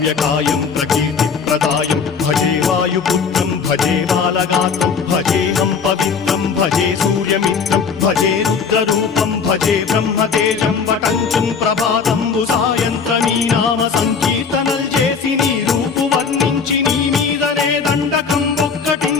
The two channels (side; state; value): right; quieter; 5.8 dB